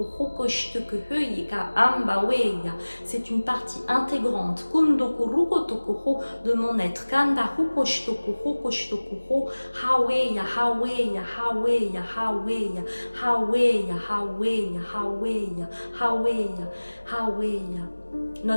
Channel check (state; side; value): inverted; both; correlation -1.00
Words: C'est une partie intégrante de mon être. Haweya, haweya, haweya, haweya, haweya, haweya, haweya, haweya, haweya.